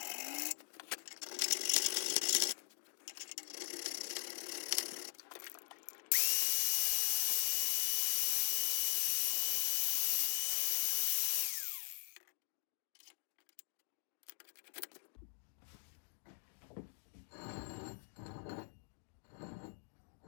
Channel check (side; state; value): right; silent; digital silence